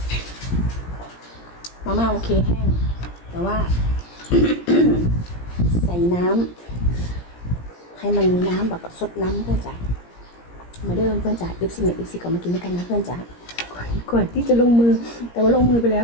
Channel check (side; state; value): right; late; 17 ms